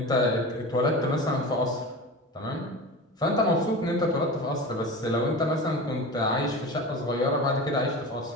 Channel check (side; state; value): both; normal; correlation 0.30